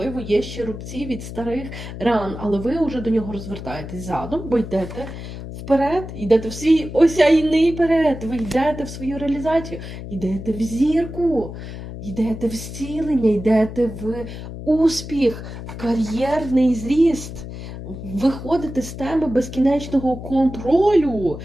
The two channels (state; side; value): noise; left; hum, 10 dB below the sound